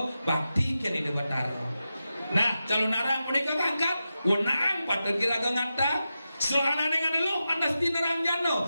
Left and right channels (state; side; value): inverted; both; correlation -0.91